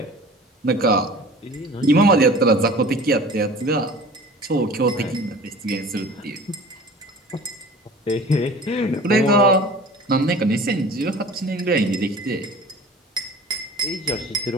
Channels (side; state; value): both; normal; correlation 0.42